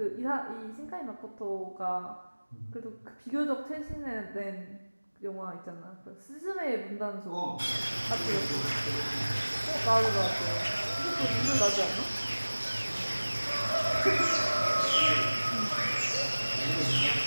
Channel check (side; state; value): both; inverted; correlation -1.00